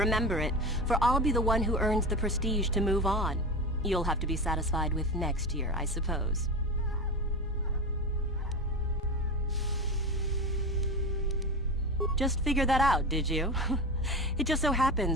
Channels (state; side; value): normal; both; correlation 0.24